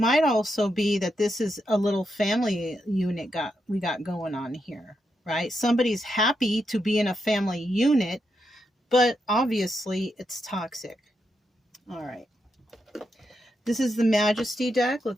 also be that this is a little family unit we got going on here, right? Somebody's happy to be in a family unit, but obviously it's toxic. All right. This is the Majesty deck.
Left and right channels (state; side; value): normal; both; correlation 0.83